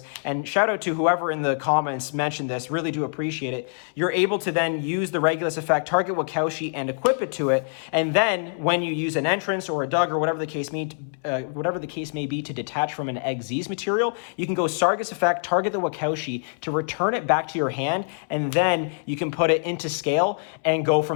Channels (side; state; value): right; silent; 62 dB below the other